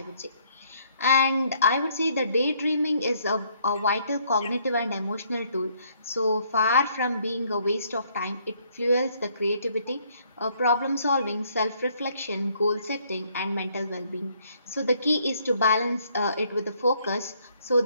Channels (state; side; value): inverted; both; correlation -0.67